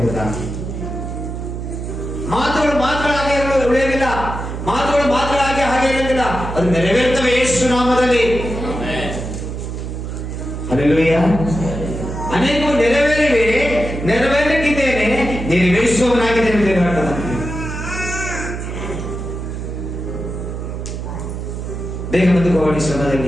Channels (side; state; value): right; noise; hum, 6 dB below the sound